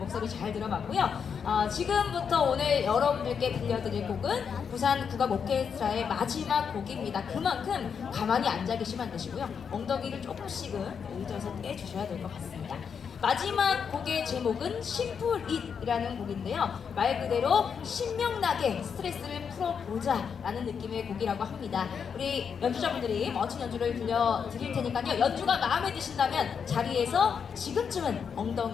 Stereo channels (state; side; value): quieter; right; 6.7 dB